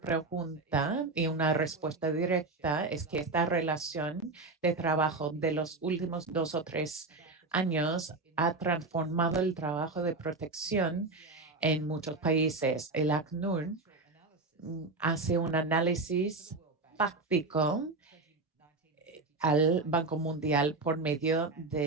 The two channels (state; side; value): quieter; left; 3.4 dB